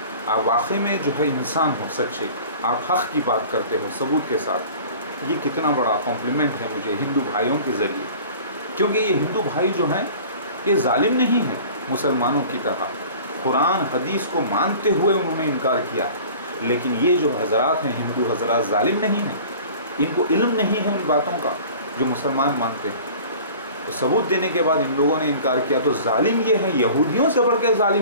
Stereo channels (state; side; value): inverted; both; correlation -0.44